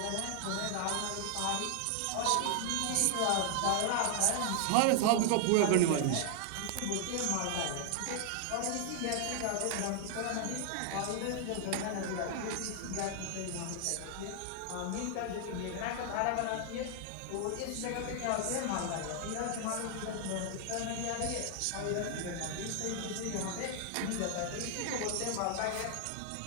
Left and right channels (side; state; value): both; different; correlation 0.00